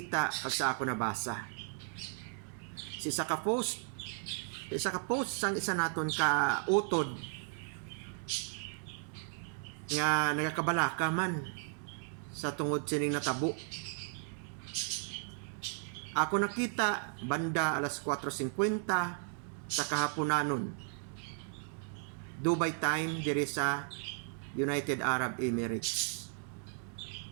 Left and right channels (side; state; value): left; silent; 54 dB below the other